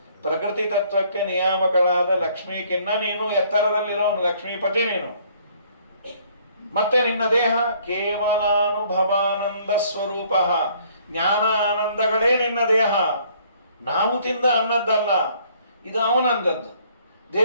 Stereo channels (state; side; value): inverted; both; correlation -0.61